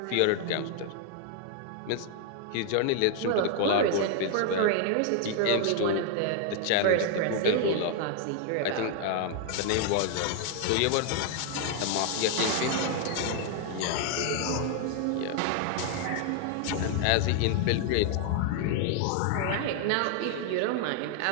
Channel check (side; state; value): both; different; correlation 0.00